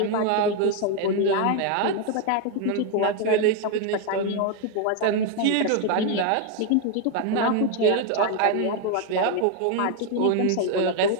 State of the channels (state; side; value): different; both; correlation 0.01